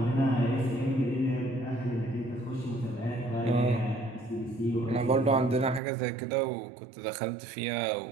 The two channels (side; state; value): left; drops out; at 5.8 s